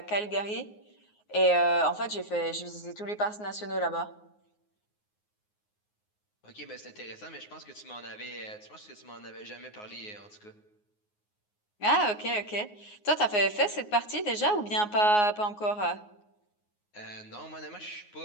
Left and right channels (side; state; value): right; late; 9.6 ms